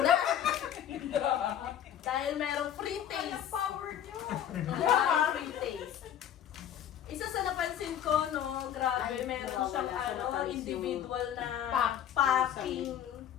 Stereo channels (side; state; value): right; quieter; 10.1 dB